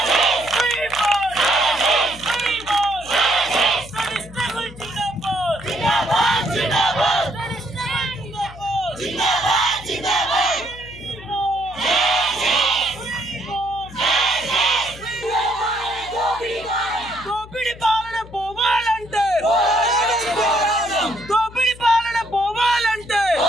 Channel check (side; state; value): left; noise; hum, 18 dB below the sound